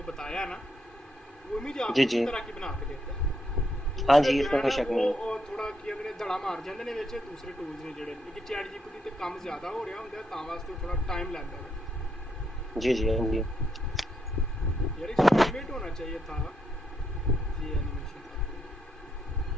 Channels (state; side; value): normal; both; correlation 0.78